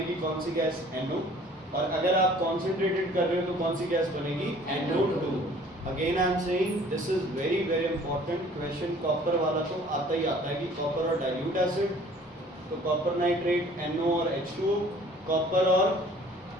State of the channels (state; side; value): normal; both; correlation 0.53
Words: कौन सी गैस? NO। और अगर आप कॉन्सेंट्रेटेड कर रहे हो तो कौन सी गैस बनेगी? NO2। Again I am saying this is very very important question. Copper वाला तो आता ही आता है कि कॉपर और डाइल्यूट एसिड, तो कॉपर नाइट्रेट NO और H2O, कॉपर और